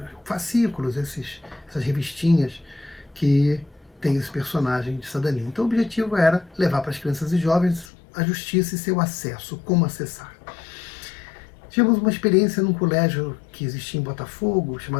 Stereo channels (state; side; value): drops out; right; at 7.9 s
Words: fascículos, essas revistinhas que tem esse personagem de cidadania. Então o objetivo era levar para as crianças e jovens a justiça e seu acesso, como acessar. Tivemos uma experiência num colégio que existia em Botafogo,